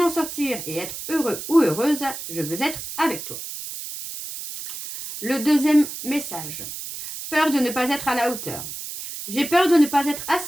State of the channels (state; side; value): noise; right; hiss, 9 dB below the sound